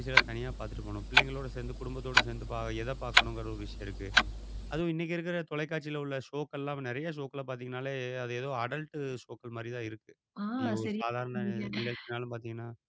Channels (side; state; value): both; identical; correlation 1.00